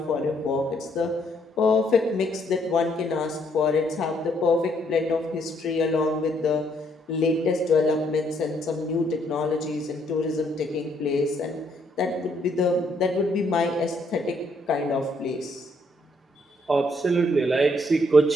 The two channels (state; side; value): normal; both; correlation 0.70